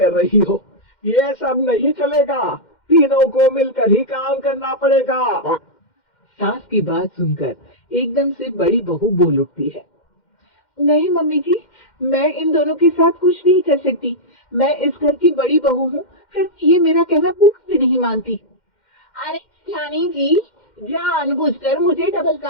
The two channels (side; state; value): right; late; 2.1 ms